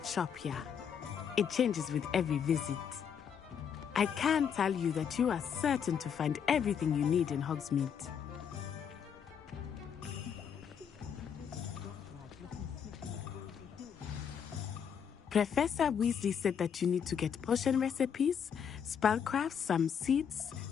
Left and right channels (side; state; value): right; quieter; 7.6 dB